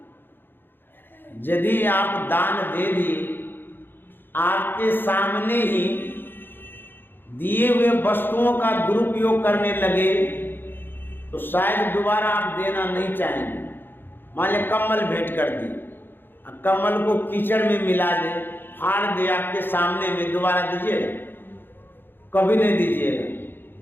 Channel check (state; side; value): late; right; 0.099 ms